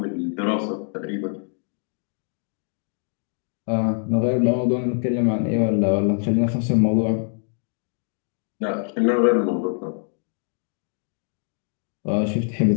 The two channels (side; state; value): right; silent; 60 dB below the other